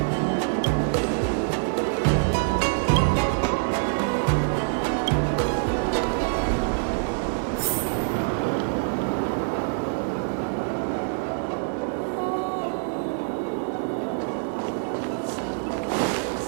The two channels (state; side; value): silent; left; digital silence